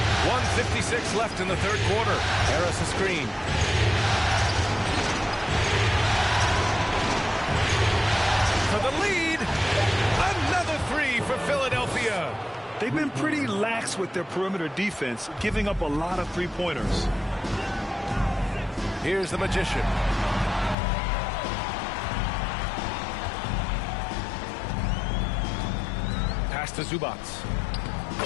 1:56 left in the third quarter. Harris a screen. For the lead. Another 3 for Philadelphia. They've been pretty lax with their perimeter defense, giving up a lot of 3-pointers. Here's the magician. Pass to Zubac.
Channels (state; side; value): drops out; right; at 20.8 s